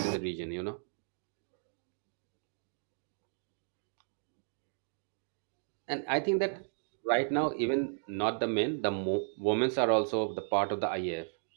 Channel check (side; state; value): left; silent; digital silence